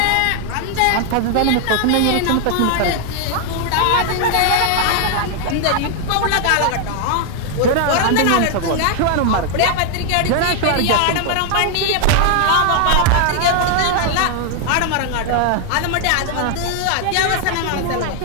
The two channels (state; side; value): different; both; correlation 0.00